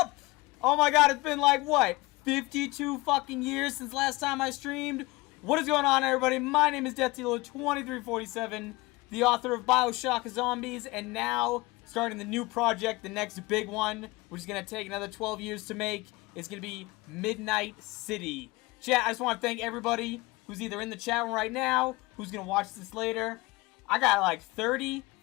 Oh my god, it's been like, what, 52 fucking years since last time I streamed? What is going on, everybody? My name is DeathDealer2347, the author of BO3 Zombies, and now starting the new project, the next big one, which is going to take another 12 years to make. It's going to be Midnight City. Chat, I just want to thank everybody who's either in the chat room right now, who's going to watch this later. I got like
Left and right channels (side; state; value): right; quieter; 22.7 dB